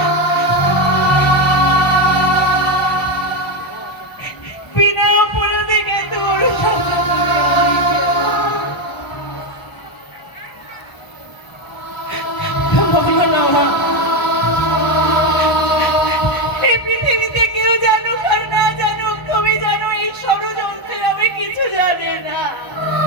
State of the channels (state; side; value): late; right; 1.0 ms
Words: বিনা অপরাধে কিন্তু বলো না মা, এই পৃথিবীতে কেউ জানুক আর না জানুক তুমি জানো এই ষড়যন্ত্রের আমি কিছু জানি না।